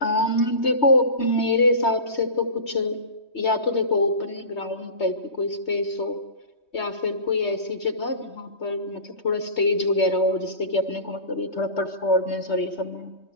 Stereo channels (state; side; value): late; right; 3.2 ms